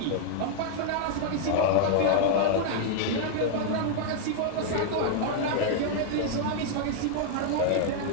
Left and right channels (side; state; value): both; different; correlation 0.00